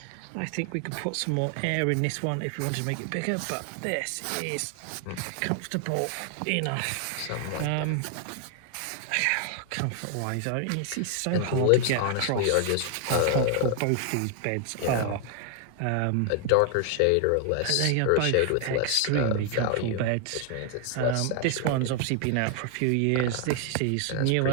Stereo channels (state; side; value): different; both; correlation 0.00